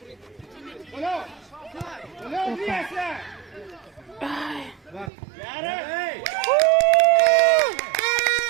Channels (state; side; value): drops out; left; at 5.1 s